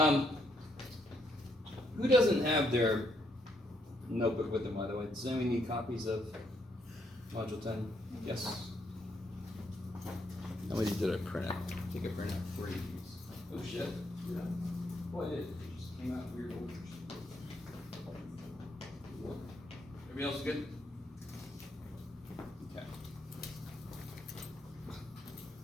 Who doesn't have their notebook with them, by the way? Does anyone need copies of Module 10? Yes? How many did I print out? Take a print out for you. Oh shit. Yeah. Boy, it just came out in weird orders. Everybody else good? Okay.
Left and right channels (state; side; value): normal; both; correlation 0.74